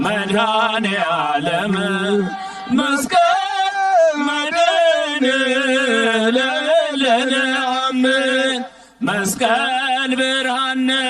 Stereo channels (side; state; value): both; identical; correlation 1.00